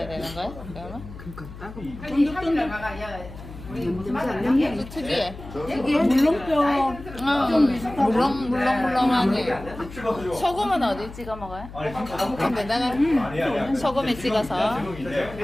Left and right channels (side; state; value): left; noise; hum, 14 dB below the sound